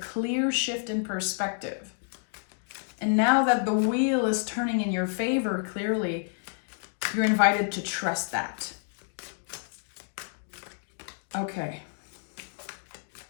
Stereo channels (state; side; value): silent; right; 58 dB below the other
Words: shift in perspective. And now that the wheel is turning in your favor, clearly, you're invited to trust that. Okay.